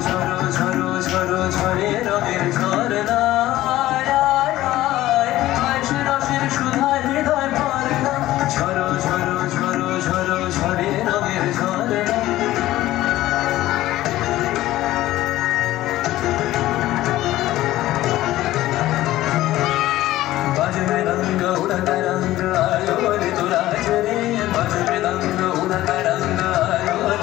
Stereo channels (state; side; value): quieter; right; 15.5 dB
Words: ঝরো ঝরো ঝরো ঝরে রঙের ঝরনা, রসের সুধার হৃদয় ভরে না। ঝরো ঝরো ঝরো ঝরো ঝরে রঙের ঝরনা। बाजमे रंग उड़ता रंग आयो रे तो राज रे, बाजमे रंग उड़ता रंग आयो